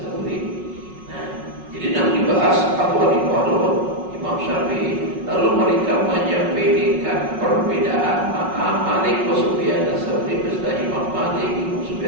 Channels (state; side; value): late; left; 5.4 ms